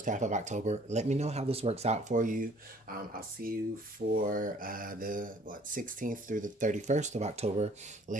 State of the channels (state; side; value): normal; both; correlation 0.56